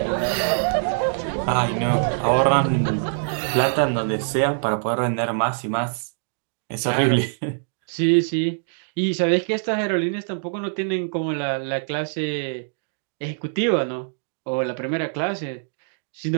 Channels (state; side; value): silent; left; digital silence